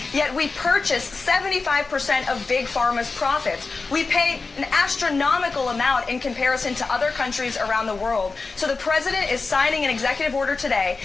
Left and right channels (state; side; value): quieter; right; 4.1 dB